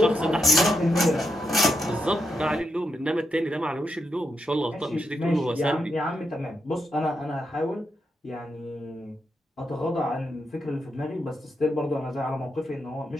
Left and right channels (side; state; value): both; normal; correlation 0.84